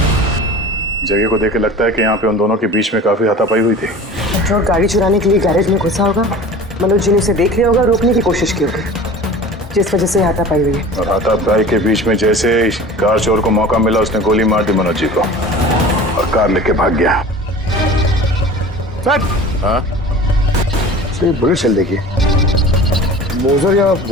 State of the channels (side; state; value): both; normal; correlation 0.40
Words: जगह को देख के लगता है कि यहाँ पे उन दोनों के बीच में काफी हाथापाई हुई थी। पेट्रोल गाड़ी चुराने के लिए गैरेज में घुसा होगा। मनोज जी ने उसे देख लिया होगा, रोकने की कोशिश की होगी, जिस वजह से हाथापाई हुई है। और हाथापाई के बीच में जैसे कार चोर को मौका मिला, उसने गोली मार दी मनोज जी को और कार लेके भाग गया। हाँ? बुलेट चल देखिए, मोजर या